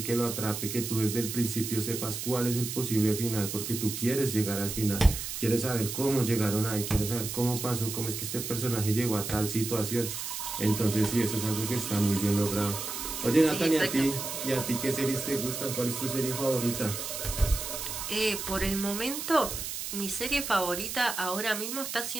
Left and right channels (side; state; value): right; noise; hiss, 5 dB below the sound